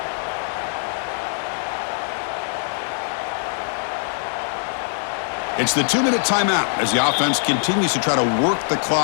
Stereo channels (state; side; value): silent; right; 64 dB below the other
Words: It's the 2-minute timeout as the offense continues to try to work the